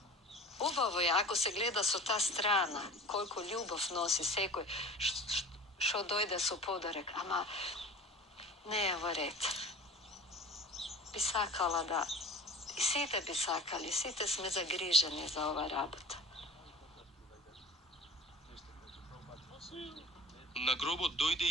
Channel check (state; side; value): normal; both; correlation 0.40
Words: Ubavo je, ako se gleda su ta strana, koliko ljubav nosi sekoj, što dojde su podarek, ama ne je red. Bi sakala da, i site bi sakali, site sme zagriženi za ova rabota. На гробот дојде